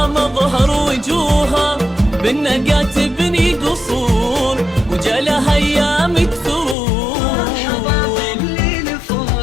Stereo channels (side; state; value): right; drops out; at 6.8 s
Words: مظهر وجوهها بالنقا تبني قصور، وجالها ايامك ثرور. مرحبا باللي